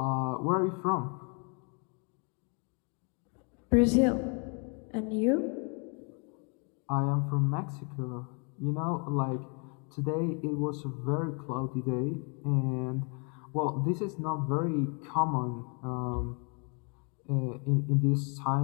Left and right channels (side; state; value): right; quieter; 36.6 dB